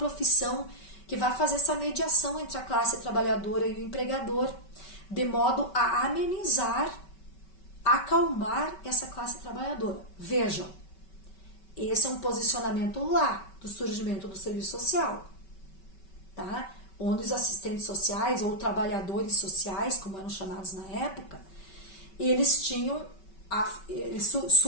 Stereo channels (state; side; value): late; right; 5.2 ms